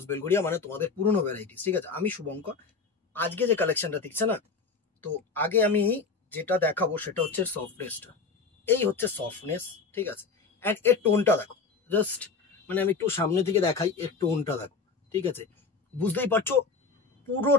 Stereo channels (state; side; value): quieter; right; 4.6 dB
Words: Belgharia, মানে তোমাদের পুরনো ভ্যারাইটিস। ঠিক আছে, আমি শুভঙ্কর। আজকে যে কালেকশনটা দেখছে না, তো আগে আমি যেটা দেখাবো সেটা হচ্ছে সফটনেসটা। এই হচ্ছে সফটনেস, ঠিক আছে। অ্যান্ড এর টোনটা দেখো, জাস্ট মানে আমি একটু সামনে থেকে দেখাই, এর টোনটা দেখো, ঠিক আছে। বুঝতেই পারছো